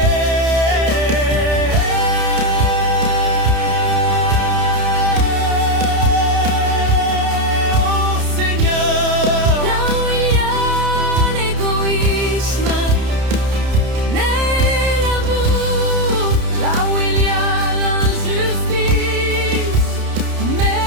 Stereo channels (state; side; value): late; left; 30 ms